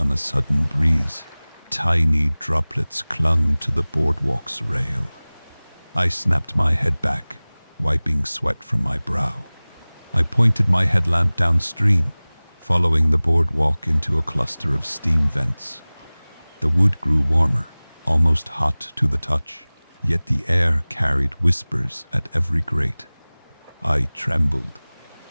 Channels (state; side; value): inverted; both; correlation -1.00